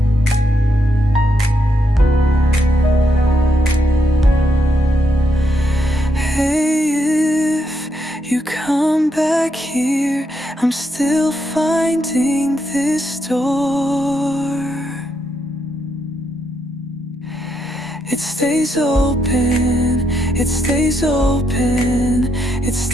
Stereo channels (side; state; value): both; normal; correlation 0.79